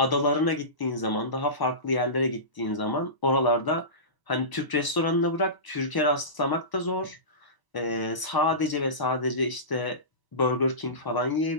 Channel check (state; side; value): late; right; 1.0 ms